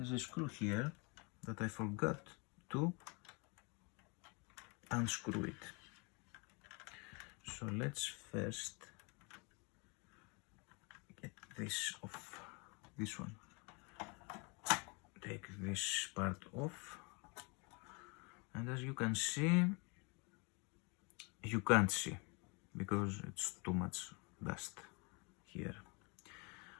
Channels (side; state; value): right; quieter; 31.3 dB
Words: a screw here that I forgot to unscrew it. So let's first get this off, this one. Take this part off, and as you can see, you can't see because it's too much dust here.